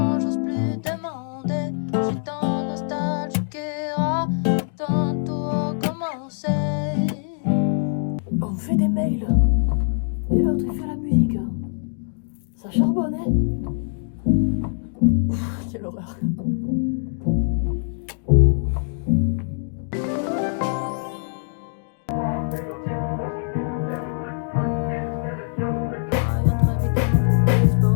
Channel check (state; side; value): silent; right; 63 dB below the other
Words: j'ose plus demander. Je suis tant nostalgique et quand tout recommencer. On me fait des mails. Et l'autre il fait la musique. Ça charbonne, hein? Quelle horreur.